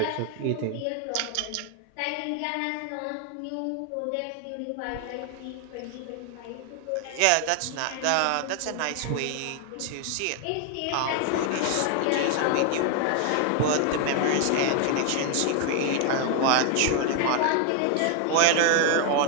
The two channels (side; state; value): both; different; correlation 0.00